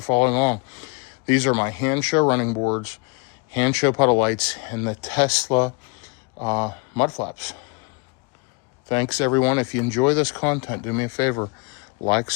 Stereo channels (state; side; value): quieter; right; 31.4 dB